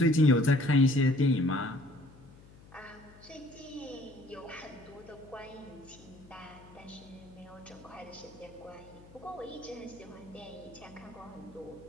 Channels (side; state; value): left; noise; hum, 22 dB below the sound